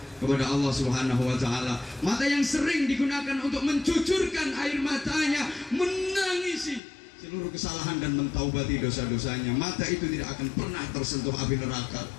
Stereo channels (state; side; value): drops out; right; at 6.8 s